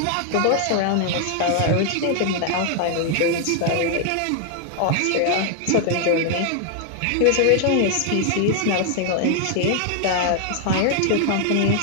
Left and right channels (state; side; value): different; both; correlation 0.00